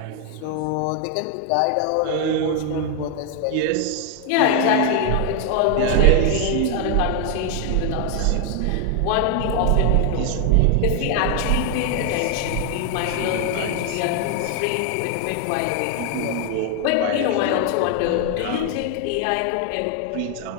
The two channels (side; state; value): both; different; correlation 0.00